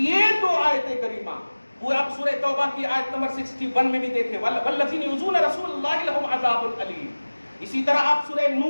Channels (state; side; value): inverted; both; correlation -1.00